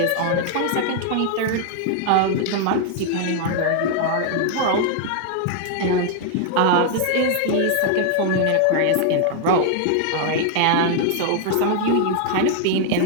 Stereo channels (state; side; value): different; both; correlation 0.00